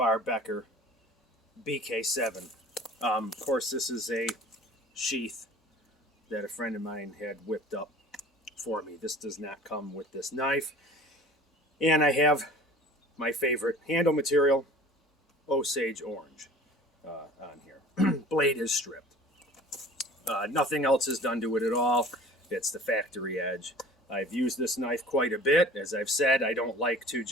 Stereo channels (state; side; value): normal; both; correlation 0.44